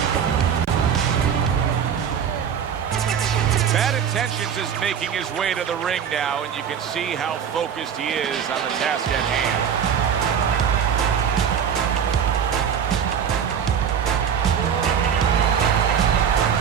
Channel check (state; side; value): quieter; left; 7.9 dB